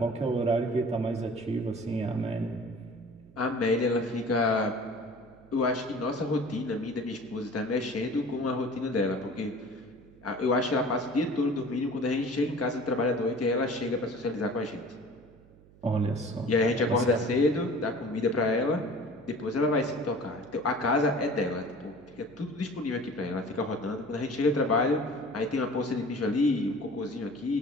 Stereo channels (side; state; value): right; noise; hum, 25 dB below the sound